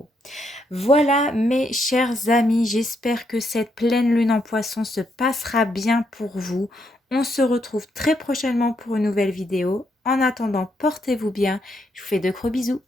Voilà mes chers amis, j'espère que cette pleine lune en poisson se passera bien pour vous. On se retrouve très prochainement pour une nouvelle vidéo. En attendant, portez-vous bien. Je vous fais de gros bisous.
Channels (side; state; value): both; normal; correlation 0.77